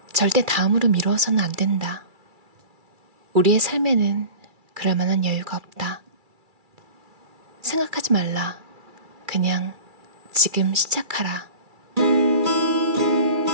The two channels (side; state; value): left; late; 2.3 ms